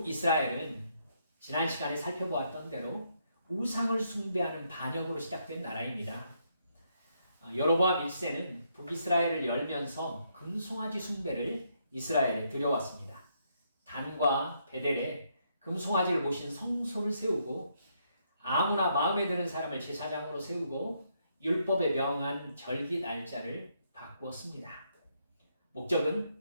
지난 시간에 살펴보았던 대로 우상을 숭배하는 반역으로 시작된 나라입니다. 여로보암 1세는 북이스라엘을 열면서 금송아지 숭배를 이스라엘에 들여왔습니다. 단과 베델에 금송아지를 모신 성소를 세우고 아무나 마음에 드는 사람을 제사장으로 세우고 율법에 명한 절기 날짜를 바꾸었습니다.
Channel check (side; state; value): both; inverted; correlation -0.75